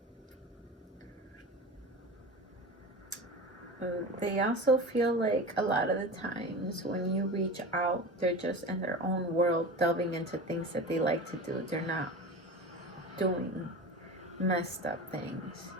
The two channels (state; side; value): normal; both; correlation 0.31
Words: They also feel like a lot of the times when you reach out, they're just in their own world, delving into things that they like to do. They're not doing messed up things,